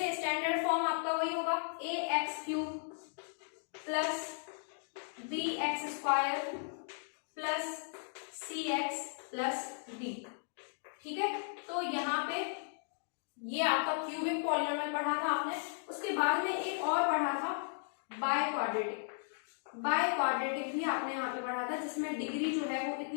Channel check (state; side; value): silent; right; digital silence